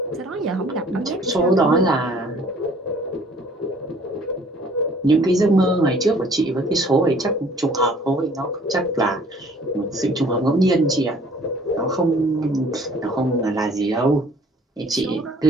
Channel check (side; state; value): both; normal; correlation 0.55